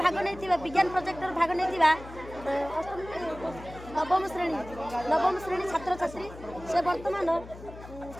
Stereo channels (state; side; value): noise; left; hum, 15 dB below the sound